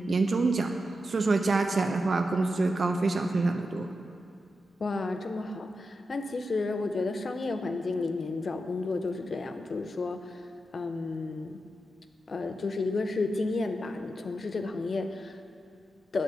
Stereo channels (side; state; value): both; normal; correlation 0.88